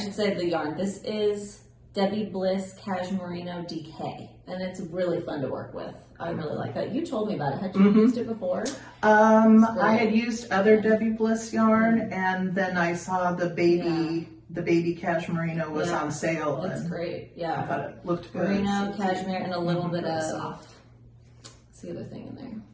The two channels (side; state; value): both; identical; correlation 1.00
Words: say the yarn. This is Debbie Bliss Cashmerino DK, and it's really fun to work with. I really like that. You told me about it. Had you used it before? I had used other Debbie Bliss yarn, and then I saw the baby cashmerino was on sale. It's great. Yeah. I thought it looked good. Merino, cashmere, and a little bit of what's the other thing in there?